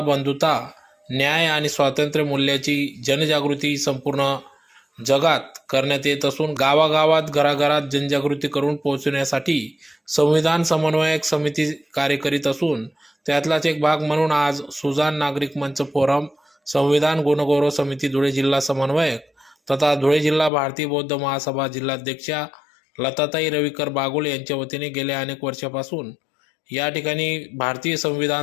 बंधुता, न्याय आणि स्वातंत्र्य मूल्याची जनजागृती संपूर्ण जगात करण्यात येत असून गावागावात घराघरात जनजागृती करून पोहोचवण्यासाठी संविधान समन्वयक समिती कार्य करीत असून त्यातलाच एक भाग म्हणून आज सुजाण नागरिक मंच फोरम संविधान गुणगौरव समिती धुळे जिल्हा समन्वयक तथा धुळे जिल्हा भारतीय बौद्ध महासभा जिल्हाध्यक्षा लताताई रविकर बागुल यांच्या वतीने गेल्या अनेक वर्षापासून या ठिकाणी भारतीय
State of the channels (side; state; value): right; drops out; at 20.5 s